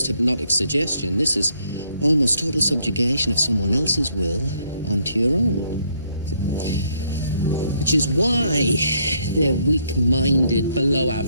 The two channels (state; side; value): inverted; both; correlation -0.70